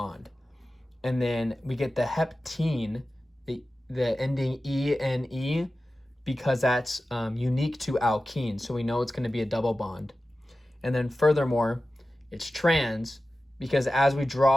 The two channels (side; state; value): both; normal; correlation 0.94